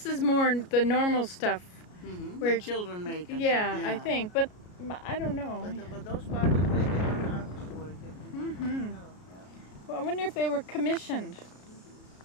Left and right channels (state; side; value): late; right; 33 ms